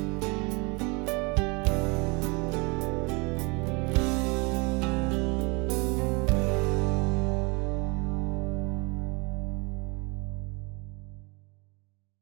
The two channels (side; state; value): left; quieter; 29.5 dB